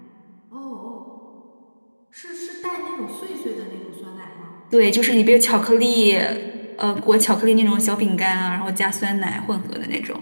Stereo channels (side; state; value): both; inverted; correlation -1.00